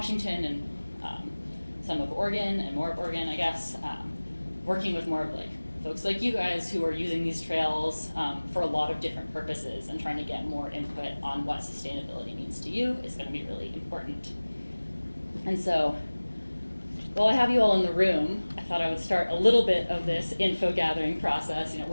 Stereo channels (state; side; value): inverted; both; correlation -1.00